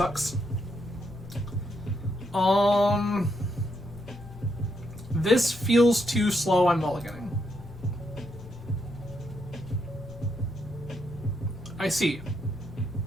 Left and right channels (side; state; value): both; normal; correlation 0.78